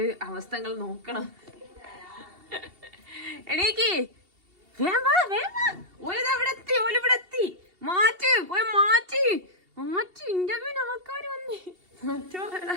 അവസ്ഥകൾ നോക്കണം. എണീക്ക്. ഓലിവിടെ മാറ്റി ഇന്റർവ്യൂവിന് ആൾക്കാർ വന്നേ.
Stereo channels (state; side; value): late; left; 2.7 ms